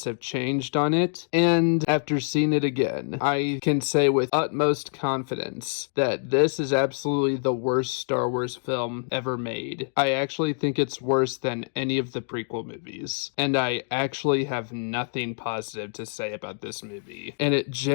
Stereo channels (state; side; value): silent; right; digital silence